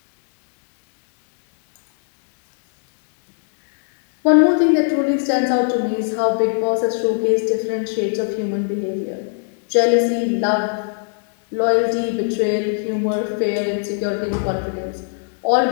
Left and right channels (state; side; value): silent; right; 61 dB below the other